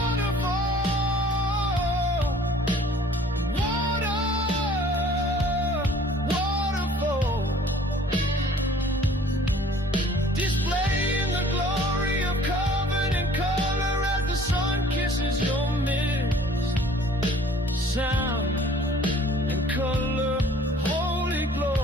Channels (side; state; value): both; normal; correlation 0.53